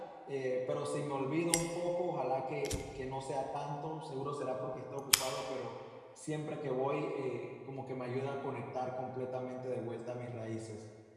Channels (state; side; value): identical; both; correlation 1.00